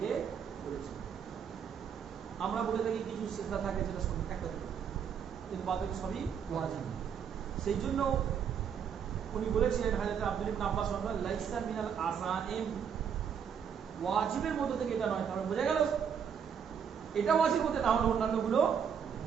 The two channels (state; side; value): quieter; left; 7.5 dB